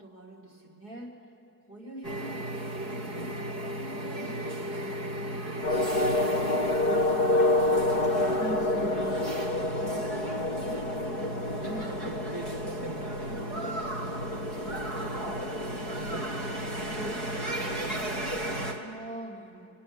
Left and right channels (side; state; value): right; late; 4.7 ms